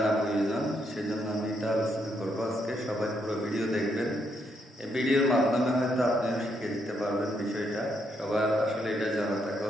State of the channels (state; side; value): normal; both; correlation 0.77